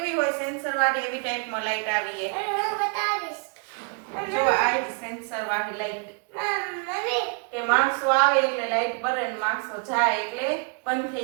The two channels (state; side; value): quieter; left; 37.8 dB